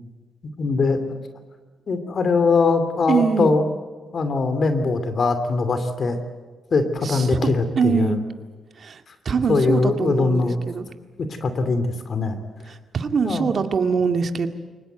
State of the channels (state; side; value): normal; both; correlation 0.80